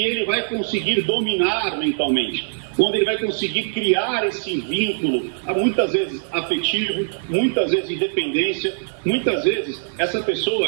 ele vai conseguir dominar mentalmente. Quando ele vai conseguir criar esse vínculo, muitas vezes afetivo, muitas vezes de dependência, muitas vezes essa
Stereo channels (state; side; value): silent; left; 63 dB below the other